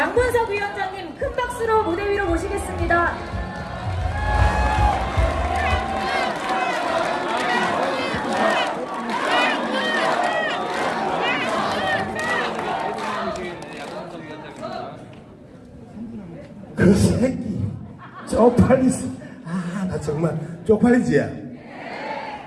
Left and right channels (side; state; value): both; identical; correlation 1.00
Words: 위원장님 큰 박수로 무대 위로 모시겠습니다. 그 새끼 쪽팔리지. 나 정말 쪽팔리지.